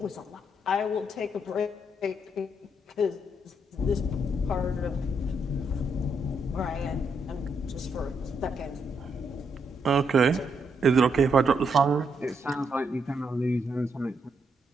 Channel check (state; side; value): normal; both; correlation 0.77